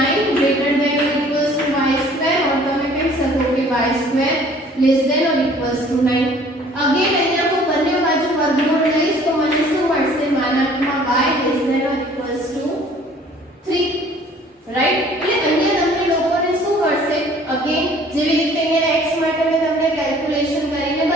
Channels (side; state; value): both; normal; correlation 0.54